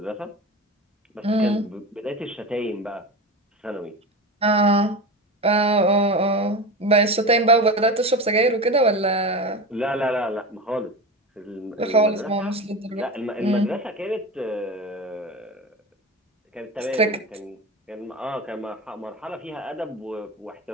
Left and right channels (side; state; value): both; normal; correlation 0.26